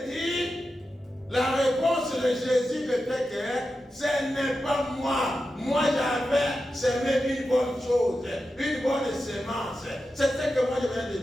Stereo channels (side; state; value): both; normal; correlation 0.91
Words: dit, la réponse de Jésus était que ce n'est pas moi. Moi j'avais semé une bonne chose, une bonne semence. C'est ce que moi je viens de